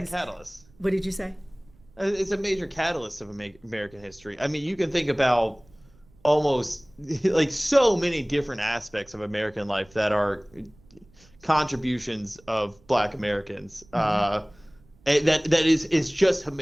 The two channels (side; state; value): right; noise; rumble, 29 dB below the sound